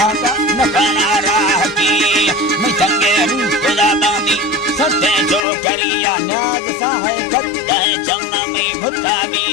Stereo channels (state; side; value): drops out; right; at 5.5 s